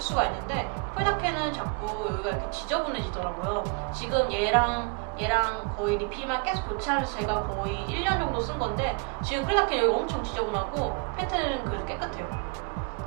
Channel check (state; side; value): quieter; left; 33.4 dB